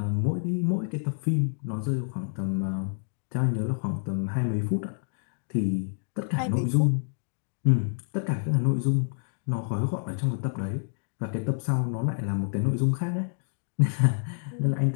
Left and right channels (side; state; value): right; silent; digital silence